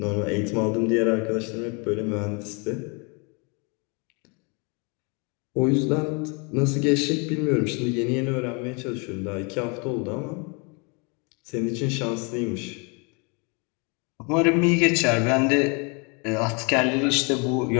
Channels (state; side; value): quieter; right; 32.8 dB